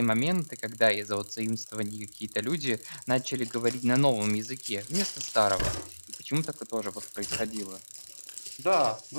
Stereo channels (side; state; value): both; inverted; correlation -1.00